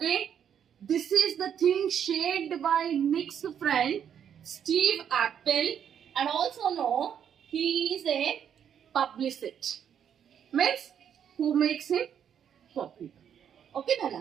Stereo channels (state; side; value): quieter; left; 8.7 dB